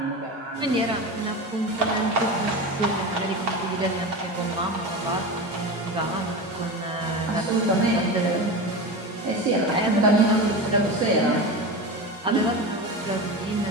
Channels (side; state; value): both; normal; correlation 0.25